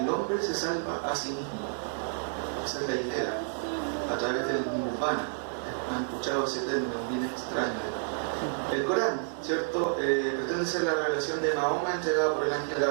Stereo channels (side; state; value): left; silent; digital silence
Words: hombre se salva a sí mismo. Esa es la idea, a través del nirvana. Han escuchado ese término bien extraño. El Corán, ¿cierto?, pretende ser la revelación de Mahoma entregada por el ángel